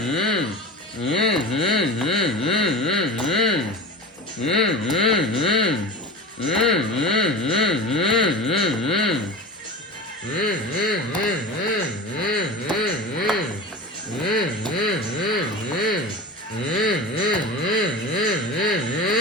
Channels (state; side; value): normal; both; correlation 0.30